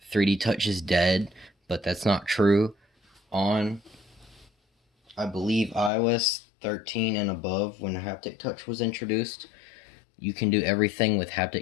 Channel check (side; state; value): right; drops out; at 5.9 s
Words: 3D Touch is dead, but that's not true on, I believe, iOS 13 and above. When haptic touch was introduced, you can do everything with